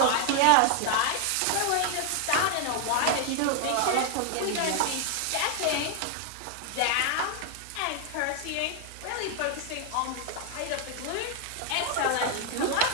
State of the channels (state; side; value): different; both; correlation 0.00